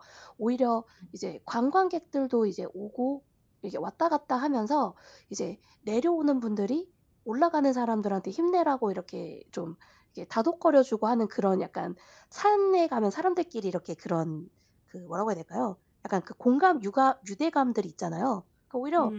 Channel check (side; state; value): both; identical; correlation 1.00